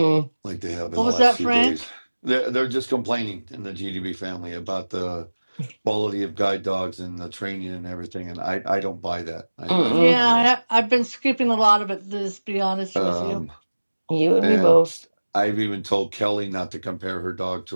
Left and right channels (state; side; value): inverted; both; correlation -1.00